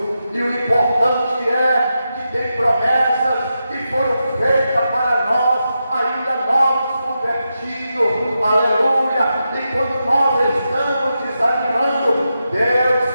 E o importante é que tem promessas que foram feitas para nós, ainda novos convertidos, aleluia. E quando nós estamos desanimando, Deus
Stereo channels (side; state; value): both; inverted; correlation -0.88